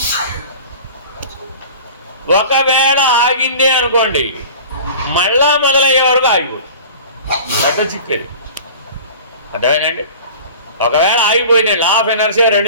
ఒకవేళ ఆగిందే అనుకోండి, మళ్ళా మొదలయ్యే వరకు ఆగిపోతుంది. పెద్ద చిక్కది. అర్థమైందండి? ఒకవేళ ఆగిపోయింది, లా ఆఫ్ ఎనర్జీ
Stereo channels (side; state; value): both; inverted; correlation -0.41